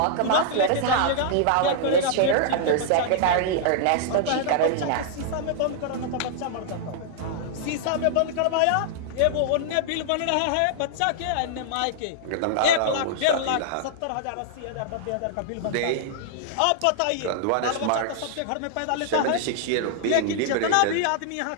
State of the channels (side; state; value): both; different; correlation -0.01